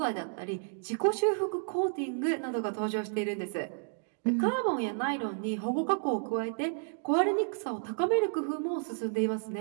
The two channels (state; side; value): silent; left; digital silence